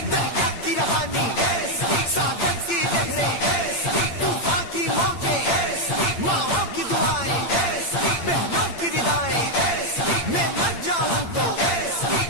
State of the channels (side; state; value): right; late; 8.7 ms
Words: کی روانی ساگر کی لہریں طوفان کی موجیں، ماؤں کی دعائیں بہنوں کی ردائیں، میں مر جاؤں تو